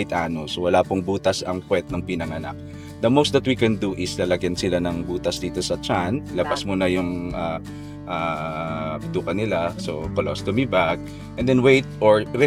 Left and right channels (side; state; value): both; identical; correlation 1.00